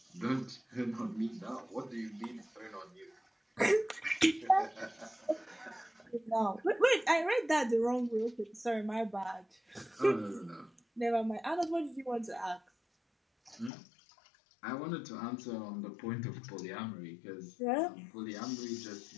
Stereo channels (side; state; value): right; drops out; at 13.7 s